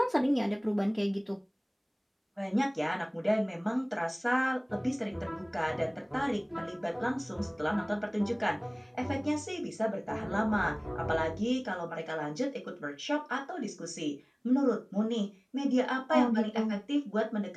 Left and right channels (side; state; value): both; identical; correlation 1.00